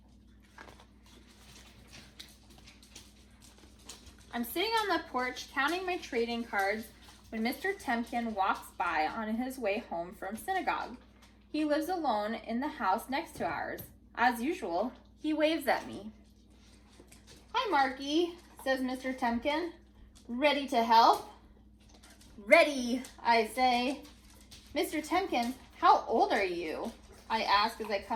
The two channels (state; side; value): identical; both; correlation 1.00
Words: I'm sitting on the porch counting my trading cards when Mr. Tempkin walks by on his way home from synagogue. He lives alone in the house next to ours. As usual, he waves at me. "Hi, Marky," says Mr. Tempkin. "Ready to help?" "Ready," I say. "Mr. Tempkin, how old are you?" I ask as I